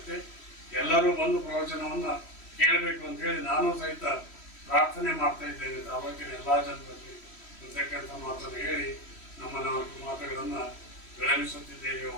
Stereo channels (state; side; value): late; right; 3.1 ms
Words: ಎಲ್ಲರೂ ಬಂದು ಪ್ರವಚನವನ್ನು ಕೇಳಬೇಕು ಅಂತ ಹೇಳಿ ನಾನು ಸಹಿತ ಪ್ರಾರ್ಥನೆ ಮಾಡ್ತಾ ಇದ್ದೇನೆ. ತಾಲೂಕಿನ ಎಲ್ಲ ಜನರಲ್ಲಿ ಅಂತಕ್ಕಂಥ ಮಾತನ್ನು ಹೇಳಿ ನಮ್ಮ 4 ಮಾತುಗಳನ್ನು ವಿಳಂಬಿಸುತ್ತಿದ್ದೇವೆ.